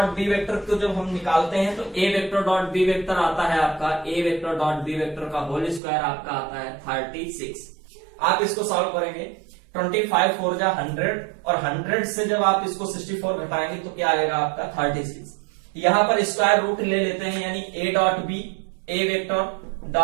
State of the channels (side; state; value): left; drops out; at 5.8 s